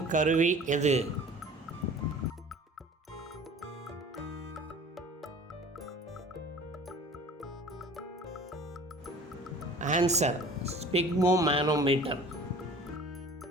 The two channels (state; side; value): normal; both; correlation 0.45